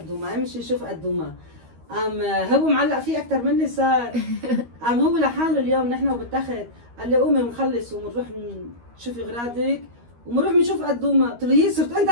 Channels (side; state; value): left; late; 13 ms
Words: امشي شوف قدومة. هو معلق فيه أكثر مني صار. هو لحاله اليوم نحن وبالتخت قال لي قومي بنخلص وبنروح نشوفي أغراضك وبنروح بنشوف قدومة. قلت له يي صرت أنت